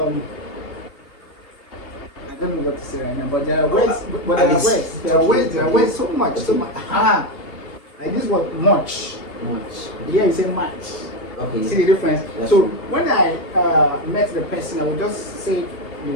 don't know what to say right now, but there are words. There are words so much. Like this word much. Here you say much. Okay. See the difference? That's so true. when I met the person, I would just say it the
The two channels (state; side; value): late; right; 2.8 ms